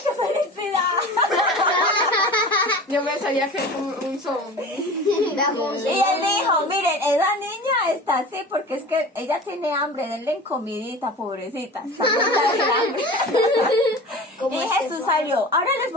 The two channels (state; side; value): normal; both; correlation 0.36